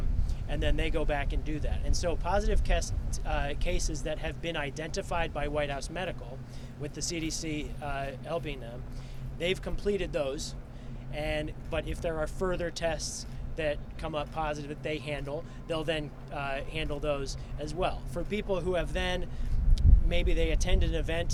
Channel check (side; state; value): both; identical; correlation 1.00